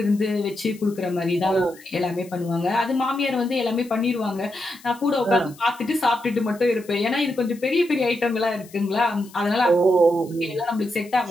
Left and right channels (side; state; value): left; noise; hiss, 23 dB below the sound